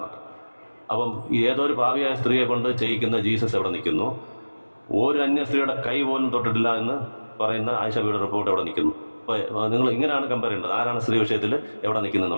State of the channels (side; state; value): both; inverted; correlation -1.00